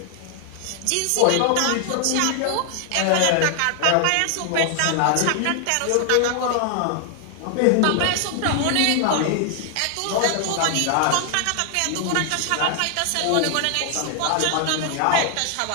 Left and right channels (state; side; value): different; both; correlation 0.00